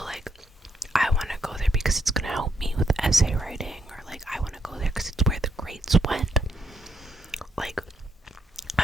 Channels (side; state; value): both; normal; correlation 0.76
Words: like I want to go there because it's going to help me with essay writing, or like I want to go there because it's where the grades went. Like